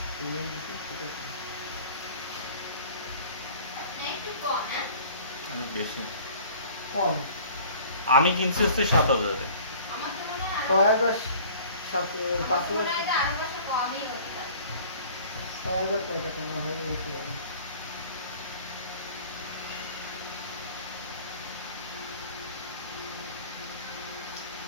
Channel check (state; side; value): inverted; both; correlation -0.47